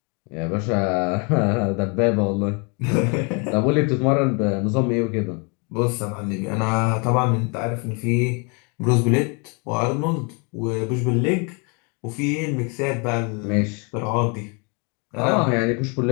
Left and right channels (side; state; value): right; quieter; 33.6 dB